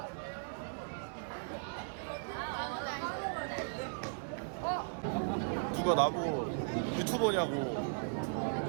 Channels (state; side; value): silent; left; 53 dB below the other